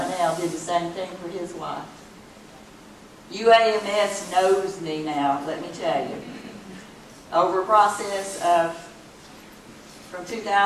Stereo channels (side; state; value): both; identical; correlation 1.00